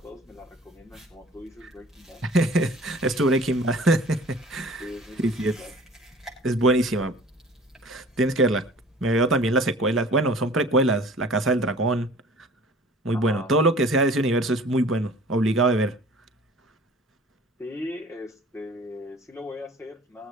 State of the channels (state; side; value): normal; both; correlation 0.47